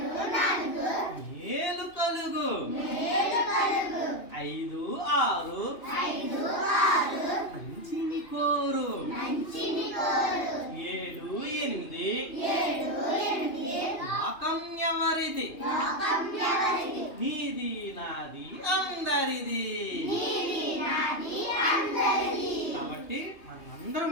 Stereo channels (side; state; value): right; late; 2.9 ms